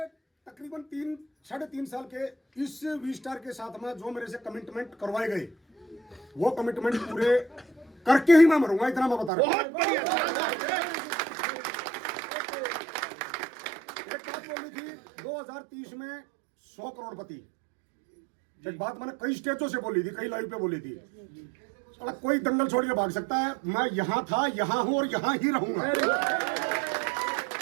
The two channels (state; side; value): drops out; left; at 9.3 s